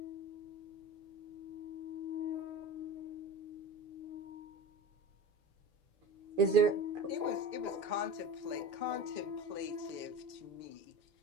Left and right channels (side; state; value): left; late; 6.9 ms